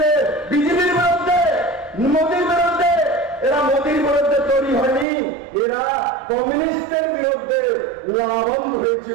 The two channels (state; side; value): drops out; left; at 5.1 s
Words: বিজেপির বিরুদ্ধে, মোদীর বিরুদ্ধে। এরা মোদীর বিরুদ্ধে তৈরি হয়নি, এরা কমিউনিস্টের বিরুদ্ধে লাভবান